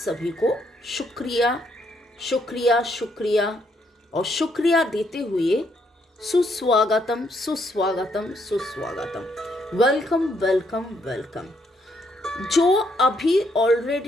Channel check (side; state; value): both; normal; correlation 0.73